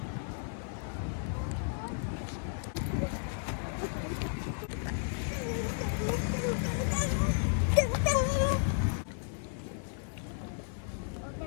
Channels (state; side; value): silent; right; digital silence